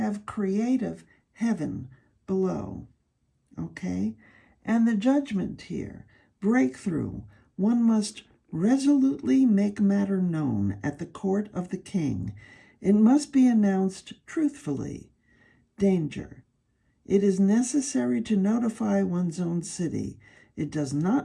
creative heaven below, okay? And the judgment here, breakthrough, one must resolutely make matter known at the court of the king. It must be announced truthfully. Danger. It is necessary to notify one's own city. It does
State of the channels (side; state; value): both; identical; correlation 1.00